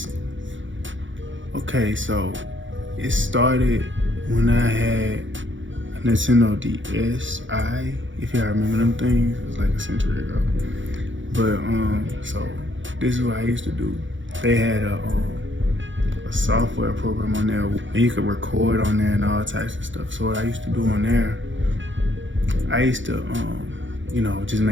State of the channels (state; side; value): late; left; 0.56 ms